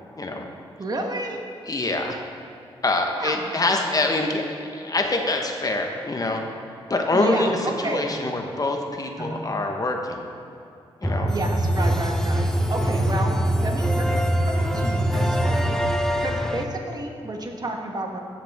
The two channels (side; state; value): both; normal; correlation 0.67